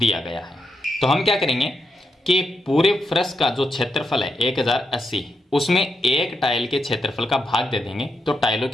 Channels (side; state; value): both; normal; correlation 0.84